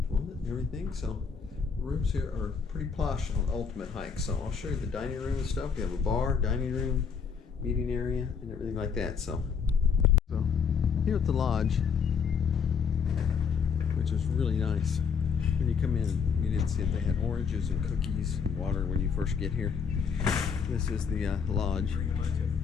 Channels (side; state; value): right; quieter; 6.3 dB